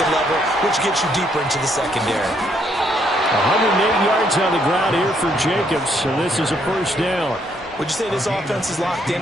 level, which gets you deeper into the secondary. 108 yards on the ground here for Jacobs, and this is a first down. Would you say this offense is locked in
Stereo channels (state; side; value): normal; both; correlation 0.71